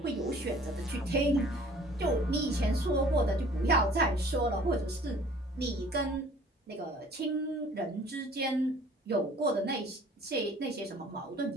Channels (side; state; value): both; normal; correlation 0.51